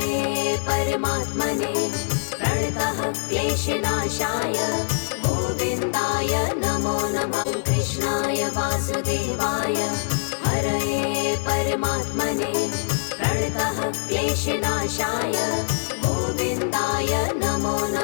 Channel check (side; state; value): right; silent; digital silence